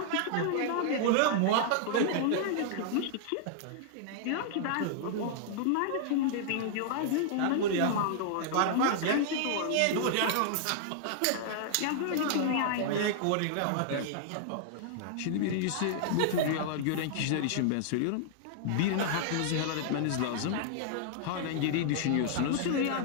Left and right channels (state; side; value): different; both; correlation -0.01